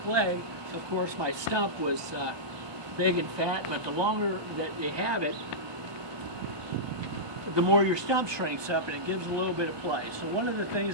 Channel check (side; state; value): left; late; 1.2 ms